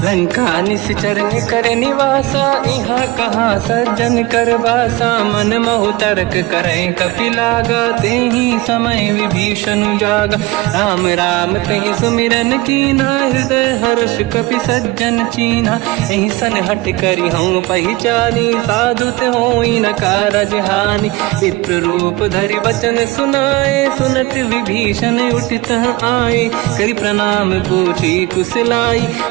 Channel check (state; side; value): quieter; left; 19.7 dB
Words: लंका निश्चर कर निवासा यहाँ कहाँ सज्जन कर वासा मन महु तर्क करें कपि लागा तेहि समय विभीषण जागा राम राम कहीं सुमिरन कीना हृदय हर्ष कपि सज्जन चीना यही सन हट करी हूँ पहचानी साधु होई न कारज हानि विप्र रूप धरि वचन सुनाए सुनत विभीषण उठित आए करि प्रणाम पूछी कुशलाई